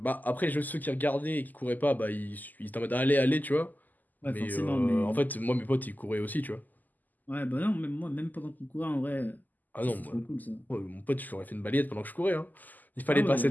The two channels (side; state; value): right; late; 0.084 ms